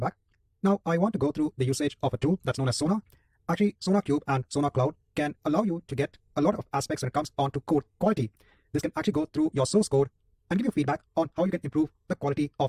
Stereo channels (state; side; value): identical; both; correlation 1.00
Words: Now I want to go through the usage of a tool that's known as Sonar. Actually, SonarQube and SonarCloud can allow you to get a lot of aspects when it comes on to code quality. This can actually go through your source code and give you feedback on how you can improve the quality